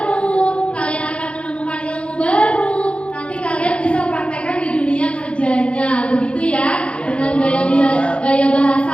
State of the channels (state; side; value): late; right; 0.059 ms